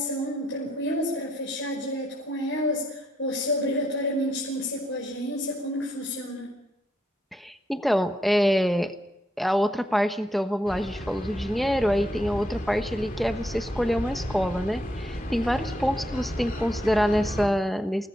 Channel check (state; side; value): normal; both; correlation 0.77